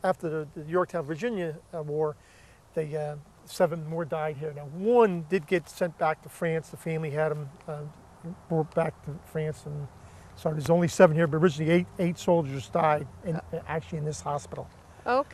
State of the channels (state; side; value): identical; both; correlation 1.00